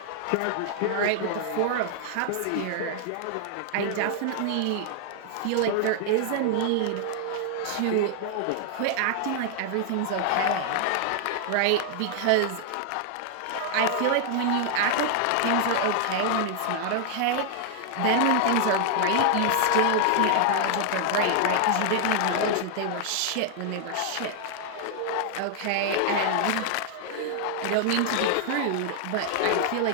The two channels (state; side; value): different; both; correlation 0.00